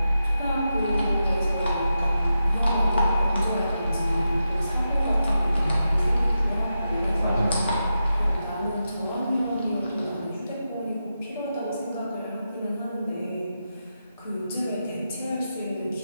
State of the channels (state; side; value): inverted; both; correlation -0.88